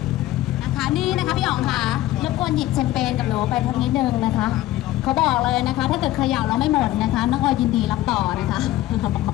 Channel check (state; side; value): quieter; right; 15.2 dB